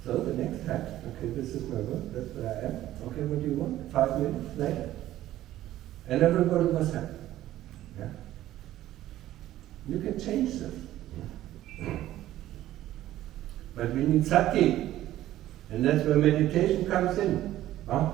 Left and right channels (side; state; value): left; quieter; 14.0 dB